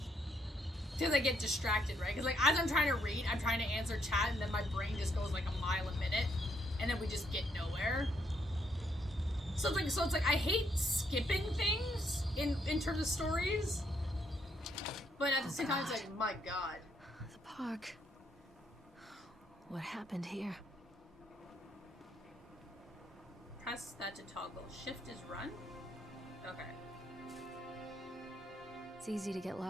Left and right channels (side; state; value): both; normal; correlation 0.74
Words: Because I get distracted, right? Because, like, as I'm trying to read, I'm trying to answer chat, and then my brain just goes like a mile a minute, and then we just get nowhere. So it's like I hate skipping things in terms of stories, but at the same time, it's like, my God. The park. What happened here? Press that to toggle. Shift is run? Okay. It's easy to get